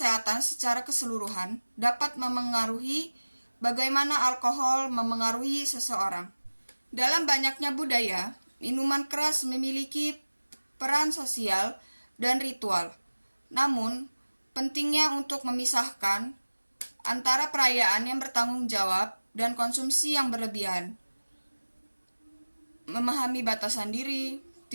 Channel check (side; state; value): both; inverted; correlation -1.00